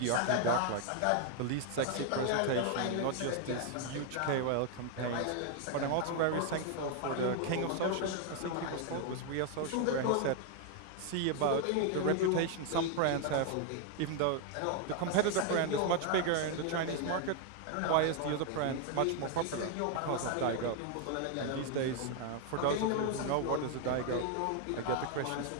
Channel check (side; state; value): both; different; correlation 0.00